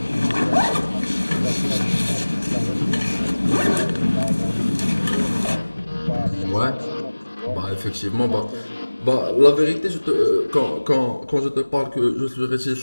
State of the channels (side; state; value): both; inverted; correlation -1.00